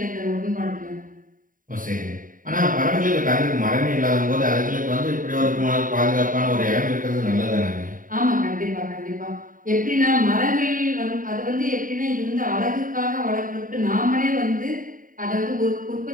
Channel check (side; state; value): left; late; 0.39 ms